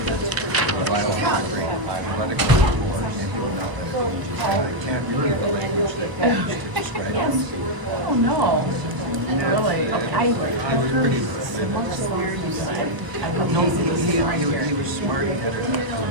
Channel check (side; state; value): left; late; 1.0 ms